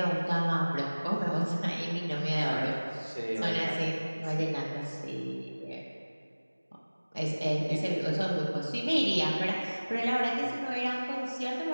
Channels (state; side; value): inverted; both; correlation -1.00